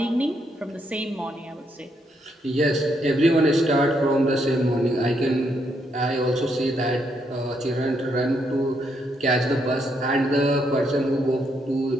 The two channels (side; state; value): both; normal; correlation 0.76